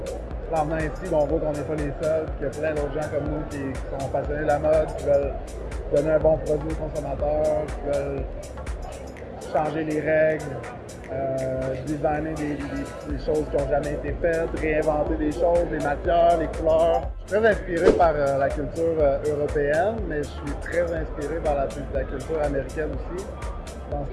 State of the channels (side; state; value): both; identical; correlation 1.00